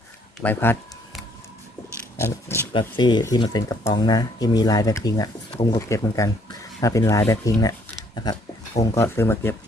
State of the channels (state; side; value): normal; both; correlation 0.64